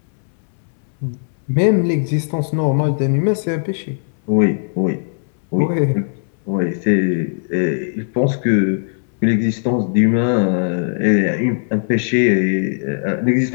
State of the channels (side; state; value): right; silent; 67 dB below the other